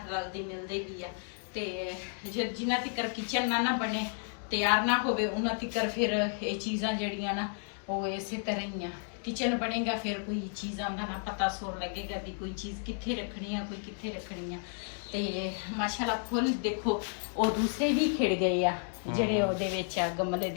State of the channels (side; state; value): right; silent; 56 dB below the other